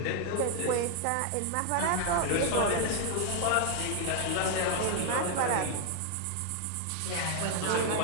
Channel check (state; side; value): different; both; correlation 0.00